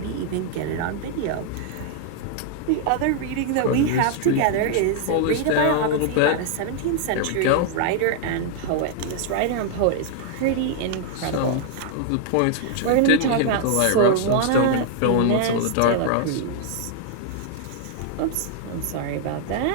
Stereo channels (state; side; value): different; both; correlation 0.00